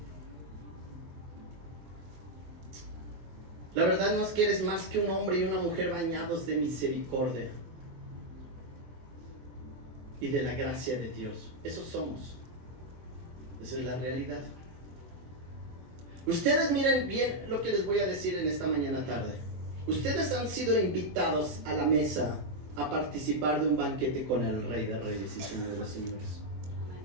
La verdad no es que eres más que un hombre y una mujer bañados de misericordia y de la gracia de Dios. Eso somos. Esa es la realidad. Ustedes miren bien lo que les voy a decir en esta mañana tarde. Ustedes han sido invitados a la mesa a participar de un banquete con el Rey de Reyes y Señor de los Señores.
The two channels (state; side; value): late; left; 23 ms